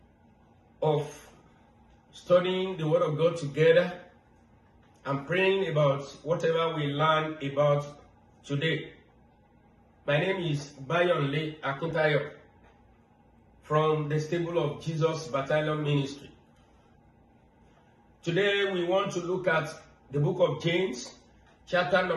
of studying the Word of God together and praying about whatever we learn about today. My name is Bayonle Akintayo from the Stable of Jesus Battalion Ministry. Today we want to look at the book of James, chapter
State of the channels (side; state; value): both; identical; correlation 1.00